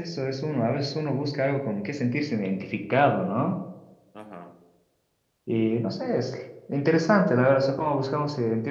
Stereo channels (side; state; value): both; identical; correlation 1.00